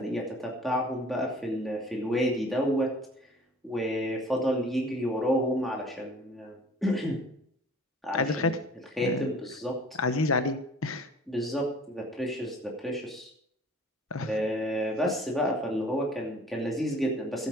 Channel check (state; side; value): normal; both; correlation 0.49